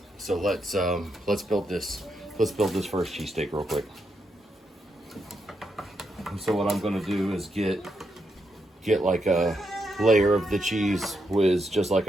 So let's build this first cheesesteak real quick. And so what I'm going to do is get like a layer of the Cheese Whiz, just like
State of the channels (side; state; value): both; normal; correlation 0.81